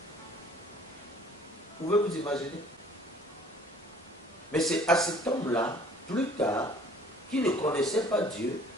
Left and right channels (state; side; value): normal; both; correlation 0.54